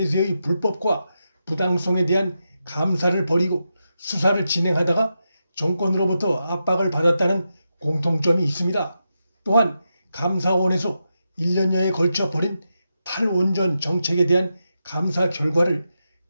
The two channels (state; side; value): inverted; both; correlation -0.87